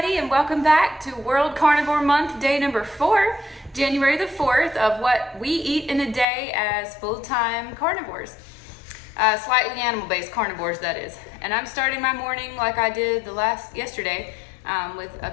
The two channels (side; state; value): right; drops out; at 6.2 s